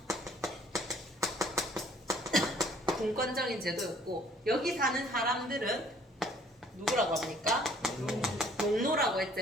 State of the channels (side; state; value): both; normal; correlation 0.58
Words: 분권적인 제도였고 여기 사는 사람들은 누구라고 합니까? 농노라고 했지.